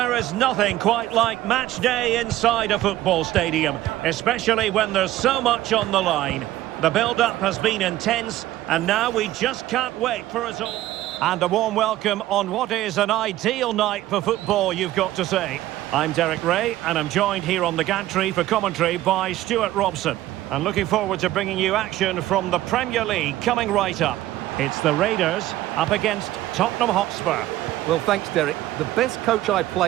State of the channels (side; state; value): left; quieter; 14.9 dB